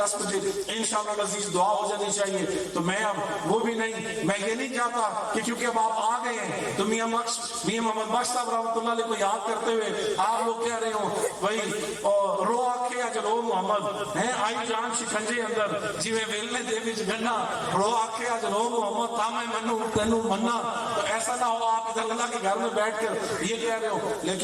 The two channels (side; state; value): both; identical; correlation 1.00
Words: بجے انشاءاللہ العزیز دعا ہو جانی چاہیے، تو میں اب وہ بھی نہیں، میں یہ نہیں چاہتا کہ کیونکہ اب آپ آ گئے ہیں تو میاں محمد بخش صاحب رحمۃ اللہ علیہ کو یاد کرتے ہوئے آپ لوگ کہہ رہے ہو بھائی رو آکھے اج رو محمد ہے آئی جان شکنجے اندر جیویں ویلنے دے وچ گنا، رو آکھے اج رو محمد تا میں منو تینوں منا، تو ایسا نہ ہو آپ ادھر اللہ کے گھر میں بیٹھ کر یہ کہہ رہے ہو،